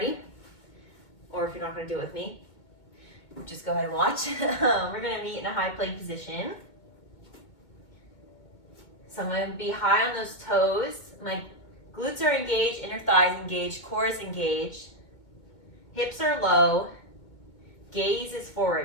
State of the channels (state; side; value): late; right; 2.2 ms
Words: or if you're not going to do it with me, just go ahead and watch. We're going to meet in a high plank position. So I'm going to be high on those toes. My glutes are engaged, inner thighs engaged, core is engaged. Hips are low. Gaze is